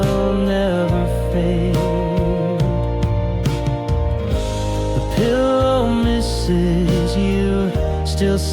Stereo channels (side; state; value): both; identical; correlation 1.00